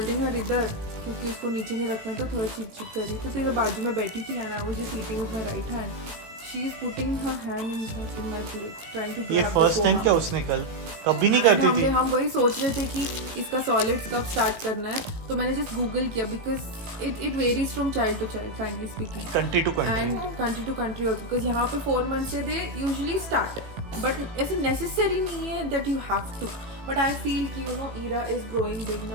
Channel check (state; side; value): late; left; 18 ms